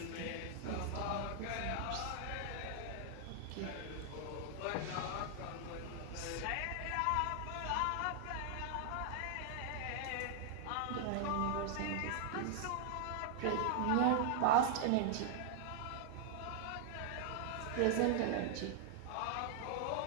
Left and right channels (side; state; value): both; different; correlation 0.00